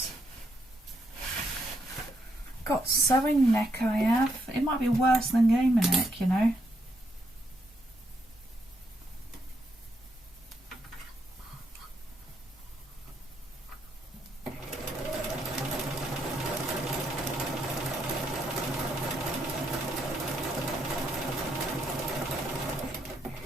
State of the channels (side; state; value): both; normal; correlation 0.76